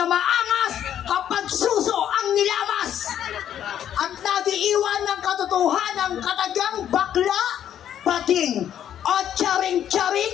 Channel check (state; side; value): quieter; right; 10.2 dB